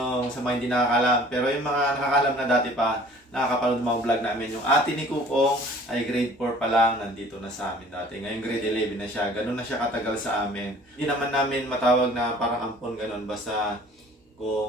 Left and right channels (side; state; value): both; normal; correlation 0.50